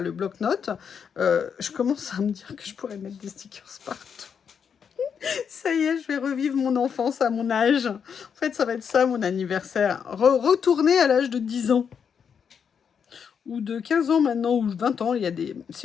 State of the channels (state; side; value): quieter; right; 7.1 dB